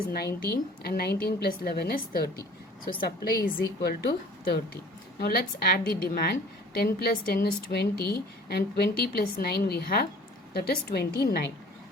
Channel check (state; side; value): normal; both; correlation 0.49